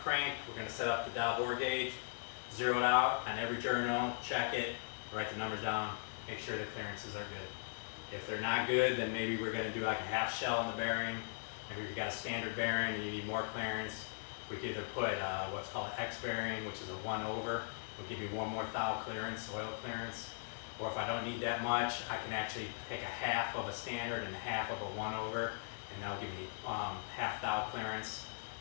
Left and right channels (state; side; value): silent; right; digital silence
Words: crank, we're going to set up the dial bore gauge, zero it out on every journal, check it, write the numbers down, make sure the clearances are good. If they're not good, then maybe we're going to do like a half shell on the bearing. Maybe if you got a standard bearing and you need more clearance, we could either put what's called an X bearing, which is a 1/over. Will give me one more thou clearance, oil clearance. Or if I don't need that much, I can actually take a half of a standard and half of a 1/over, and that'll give me half thou clearance.